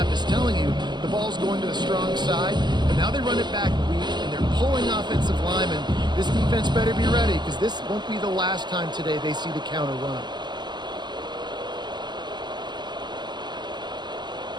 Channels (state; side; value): late; left; 0.21 ms